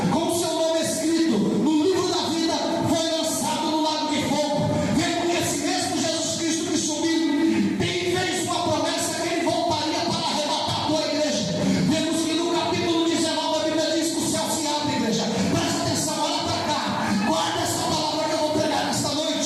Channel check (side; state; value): both; identical; correlation 1.00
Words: com o seu nome escrito no livro da vida foi lançado no lago de fogo. Vendo que esse mesmo Jesus Cristo que subiu fez uma promessa que ele voltaria para arrebatar a tua igreja. Vemos que no capítulo 19 a Bíblia diz que o céu se abre, igreja. Presta atenção, olha para cá. Guarda essa palavra que eu vou pregar nesta